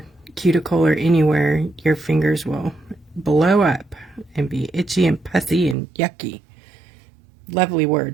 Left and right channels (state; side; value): drops out; left; at 5.8 s